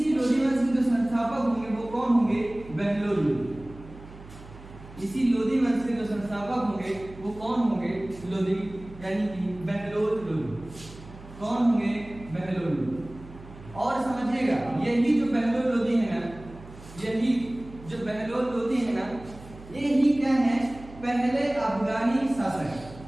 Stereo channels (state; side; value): noise; right; hum, 18 dB below the sound